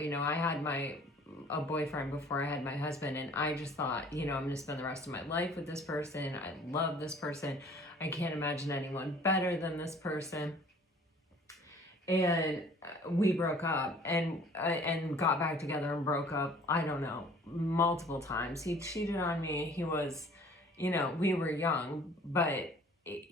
know, I had a boyfriend before I had my husband, and I just thought, you know, I'm going to spend the rest of my life with this person. I love this person. I can't imagine anyone better than this person. And we broke up and got back together and broke up, I don't know, multiple times. He cheated on me. He was, you know, we were young, but,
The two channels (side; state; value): both; normal; correlation 0.52